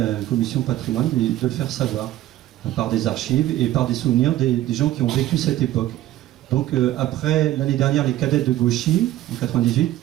Commission Patrimoine, de le faire savoir, par des archives et par des souvenirs des gens qui ont vécu cette époque. Donc après, l'année dernière, les cadettes de Gauchy, en 98,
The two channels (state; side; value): quieter; left; 14.2 dB